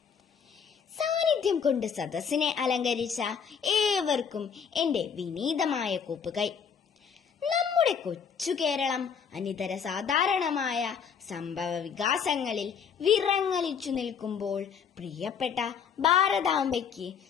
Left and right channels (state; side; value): quieter; right; 6.9 dB